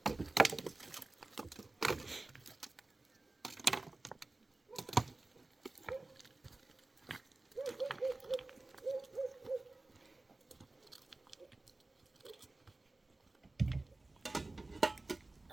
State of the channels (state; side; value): quieter; left; 3.1 dB